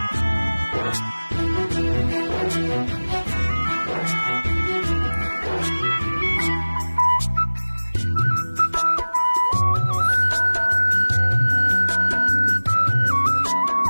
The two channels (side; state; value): both; inverted; correlation -1.00